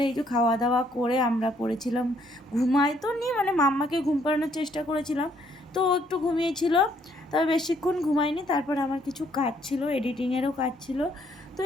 এই যে খাওয়া দাওয়া করে আমরা পড়েছিলাম, ঘুমাই তো নি, মানে মাম্মাকে ঘুম পাড়ানোর চেষ্টা করেছিলাম, তো ও একটু ঘুমিয়েছিল, তবে বেশিক্ষণ ঘুমায়নি। তারপরে আমার কিছু কাজ ছিল, এডিটিংয়েরও কাজ ছিল, তো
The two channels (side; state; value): both; normal; correlation 0.68